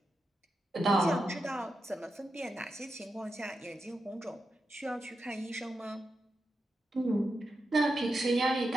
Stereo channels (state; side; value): normal; both; correlation 0.88